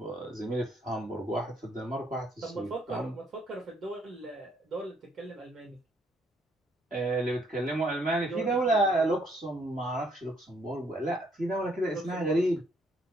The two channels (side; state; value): both; normal; correlation 0.68